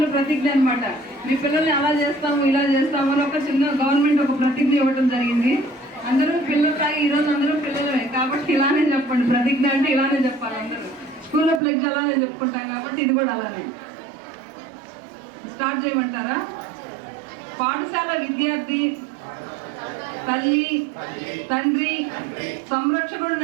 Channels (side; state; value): left; drops out; at 11.6 s